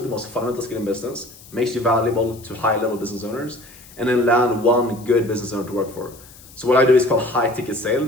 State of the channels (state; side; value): noise; left; hiss, 22 dB below the sound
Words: most fundamental skill in business, makes you valuable to high level business owners, and then land one good business owner to work for. So what I do is called high ticket